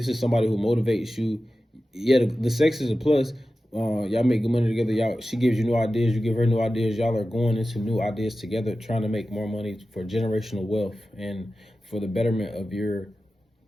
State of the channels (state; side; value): normal; both; correlation 0.94